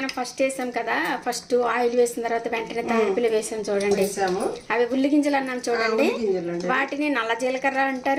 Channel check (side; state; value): both; identical; correlation 1.00